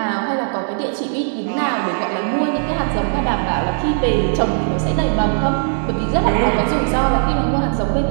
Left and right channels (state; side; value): silent; left; digital silence